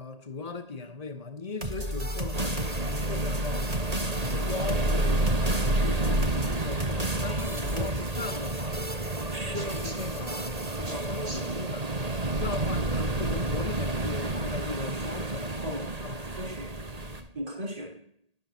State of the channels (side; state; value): left; late; 1.8 ms